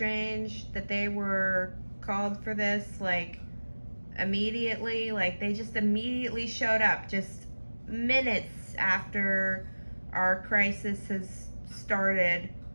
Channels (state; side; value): inverted; both; correlation -1.00